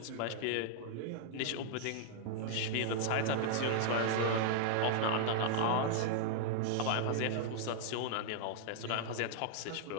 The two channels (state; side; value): different; both; correlation -0.01